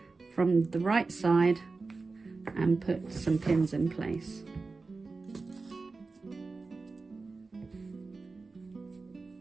from the right side and put some pins in place.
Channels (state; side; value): quieter; left; 3.9 dB